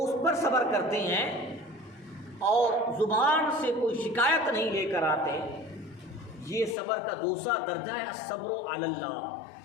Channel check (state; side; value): drops out; right; at 6.8 s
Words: اس پر صبر کرتے ہیں اور زبان سے کوئی شکایت نہیں لے کر آتے۔ یہ صبر کا دوسرا درجہ ہے الصبر علی